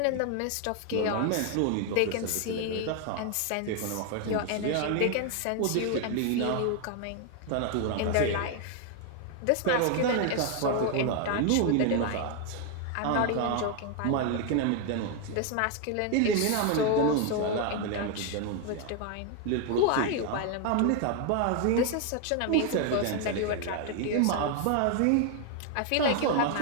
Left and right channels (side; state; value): both; different; correlation 0.01